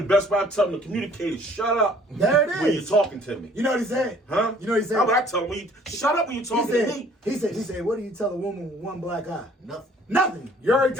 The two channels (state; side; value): normal; both; correlation 0.56